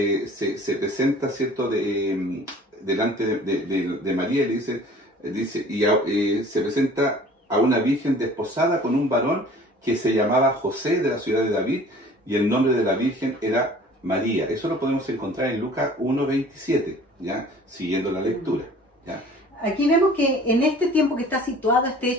se presenta, ¿cierto? Delante de María y se presenta a una virgen desposada con un varón que se llamaba José, de la ciudad de David, y el nombre de la virgen era María. Eso lo podemos encontrar en Lucas 1:27, ¿ya? Siguiendo la lectura, ¿ya? Aquí vemos que en este tiempo que está situado este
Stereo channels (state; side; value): normal; both; correlation 0.48